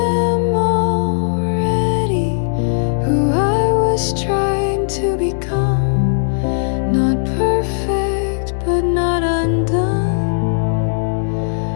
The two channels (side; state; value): right; silent; digital silence